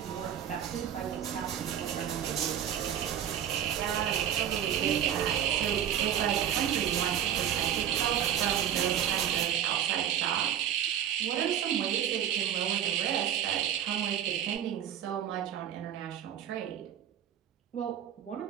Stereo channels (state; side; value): quieter; left; 10.0 dB